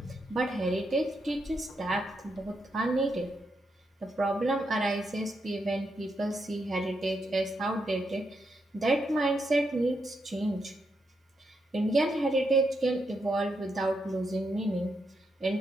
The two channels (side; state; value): both; normal; correlation 0.82